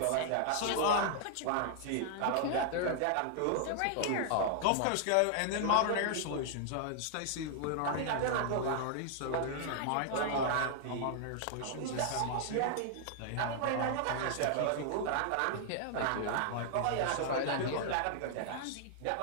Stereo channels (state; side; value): different; both; correlation -0.01